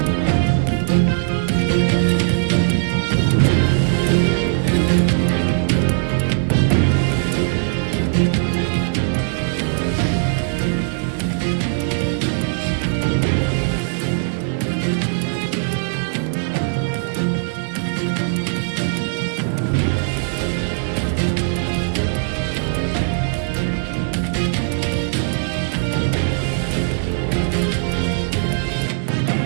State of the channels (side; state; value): left; silent; 57 dB below the other